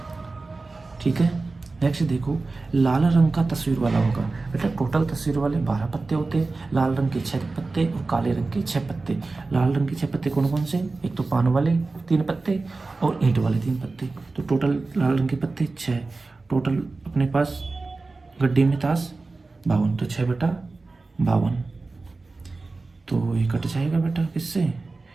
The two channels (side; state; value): left; quieter; 3.6 dB